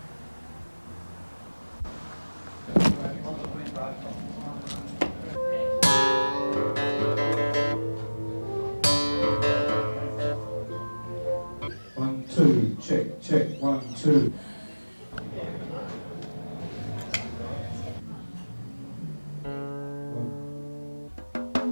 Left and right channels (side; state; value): both; inverted; correlation -1.00